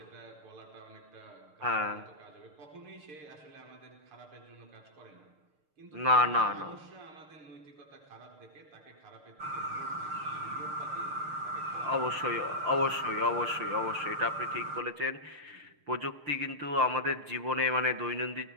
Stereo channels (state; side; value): late; left; 6.6 ms